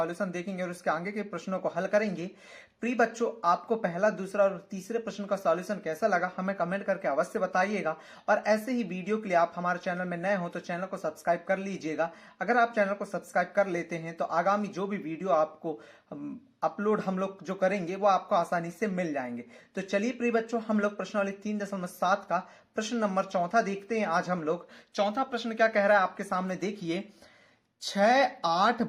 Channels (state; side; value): identical; both; correlation 1.00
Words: देखेंगे और उसके आगे के प्रश्नों को हल करेंगे। प्रिय बच्चों, आपको पहला, दूसरा और तीसरे प्रश्न का सॉल्यूशन कैसा लगा हमें कमेंट करके अवश्य बताइएगा। और ऐसे ही वीडियो के लिए आप हमारे चैनल में नए हो तो चैनल को सब्सक्राइब कर लीजिएगा। अगर आप चैनल को सब्सक्राइब कर लेते हैं तो आगामी जो भी वीडियो आपको अपलोड हम लोग जो करेंगे वो आपको आसानी से मिल जाएंगे। तो चलिए प्रिय बच्चों, हम लोग प्रश्नावली 3.7 का प्रश्न नंबर चौथा देखते हैं। आज हम लोग चौथा प्रश्न क्या कह रहा है आपके सामने देखिए। 6, 8,